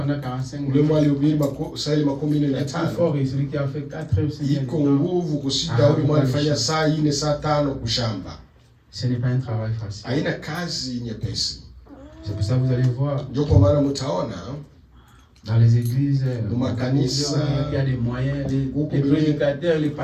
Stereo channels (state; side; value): identical; both; correlation 1.00